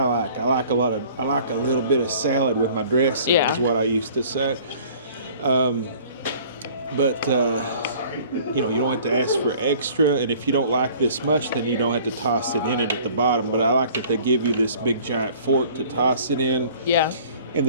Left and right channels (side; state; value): both; inverted; correlation -0.51